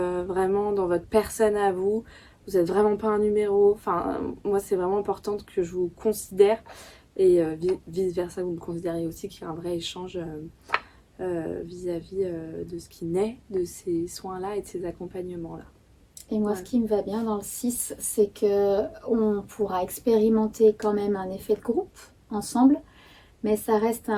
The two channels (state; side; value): identical; both; correlation 1.00